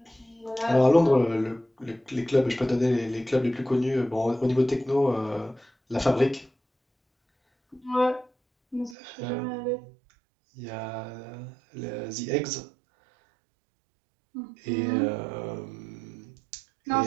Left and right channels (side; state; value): left; drops out; at 9.0 s